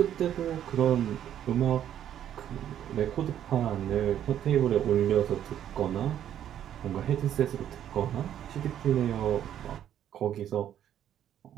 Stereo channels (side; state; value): left; quieter; 10.5 dB